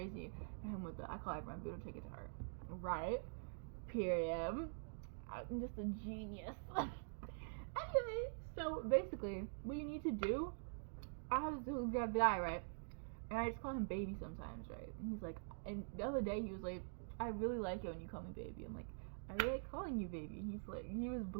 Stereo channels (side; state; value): left; silent; digital silence